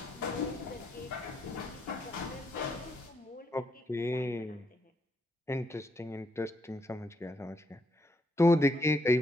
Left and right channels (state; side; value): normal; both; correlation 0.75